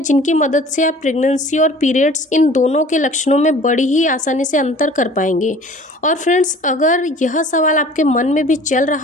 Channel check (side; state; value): both; normal; correlation 0.47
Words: जिनकी मदद से आप प्रेगनेंसी और पीरियड्स इन दोनों के लक्षणों में बड़ी ही आसानी से अंतर कर पाएंगे। और फ्रेंड्स, अगर यह सवाल आपके मन में भी चल